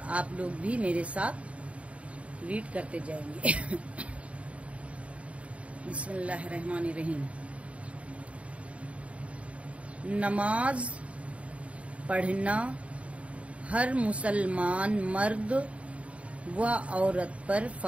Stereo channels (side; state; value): left; late; 0.064 ms